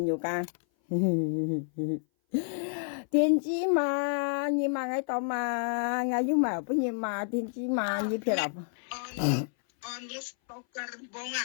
友㗎，電子嘛你買喺度買，我要買不要買電子嘛你撇啦。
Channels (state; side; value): silent; right; 57 dB below the other